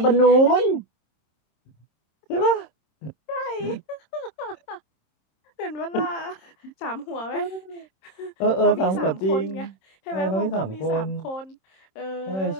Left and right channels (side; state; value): right; late; 26 ms